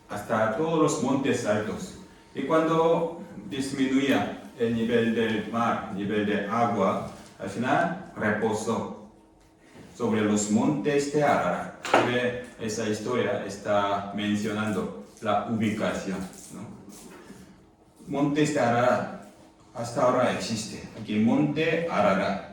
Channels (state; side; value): identical; both; correlation 1.00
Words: hasta todos los montes altos. Y cuando disminuía el nivel del mar, nivel de agua, al final reposó sobre los montes de Ararat. Esa historia está mencionando la ubicación, ¿no? Montes de Ararat, hasta ahora existe. Aquí Monte Ararat,